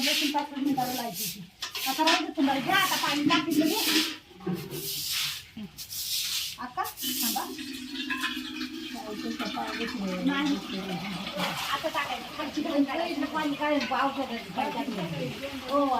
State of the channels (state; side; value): identical; both; correlation 1.00